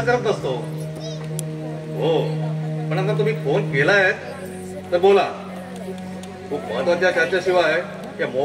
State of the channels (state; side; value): identical; both; correlation 1.00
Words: करत नसतो. हो, पण आता तुम्ही फोन केलाय तर बोला. खूप महत्वाच्या चर्चेशिवाय या